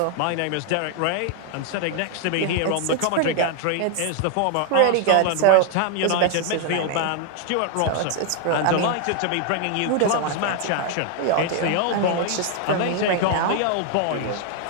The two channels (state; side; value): different; both; correlation 0.00